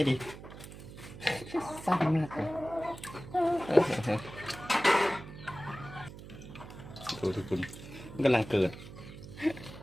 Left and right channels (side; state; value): right; noise; hum, 14 dB below the sound